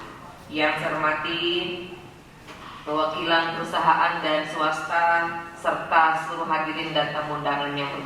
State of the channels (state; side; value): identical; both; correlation 1.00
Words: yang saya hormati perwakilan perusahaan dan swasta serta seluruh hadirin dan tamu undangan yang